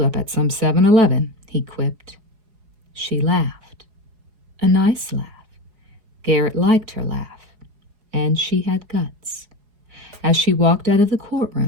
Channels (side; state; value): left; late; 4.8 ms